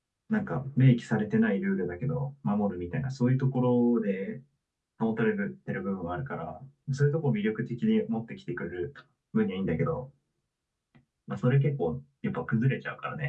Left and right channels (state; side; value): identical; both; correlation 1.00